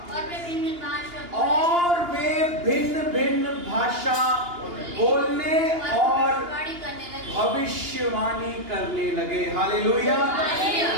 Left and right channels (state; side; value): late; left; 2.8 ms